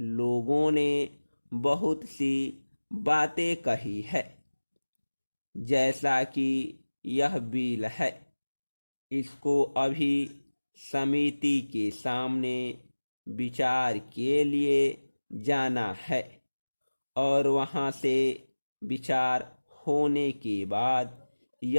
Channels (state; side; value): inverted; both; correlation -1.00